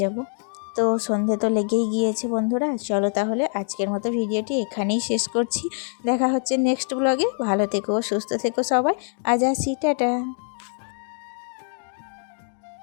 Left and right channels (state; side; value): silent; right; 55 dB below the other